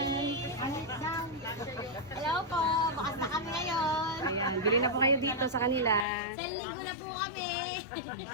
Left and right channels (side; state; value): right; drops out; at 6.1 s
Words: Hello po, bakas na kami ngayon. Ayan, bili na po kayo dito sa kanila. Sa linggo na po kami.